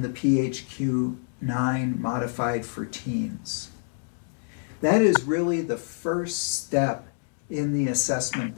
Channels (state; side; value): silent; right; 60 dB below the other